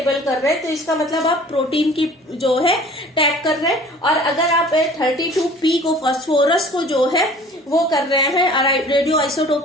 कर रहे हैं तो इसका मतलब आप प्रोटीन की जो है टैग कर रहे हैं, और अगर आप 32P को फॉस्फोरस को जो है वो कर रहे हैं और रेडियो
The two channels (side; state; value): both; normal; correlation 0.48